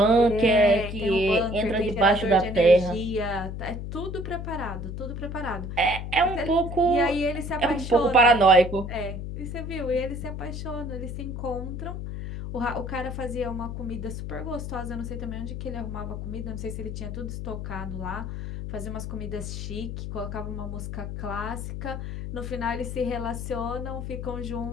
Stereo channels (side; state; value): left; noise; hum, 6 dB below the sound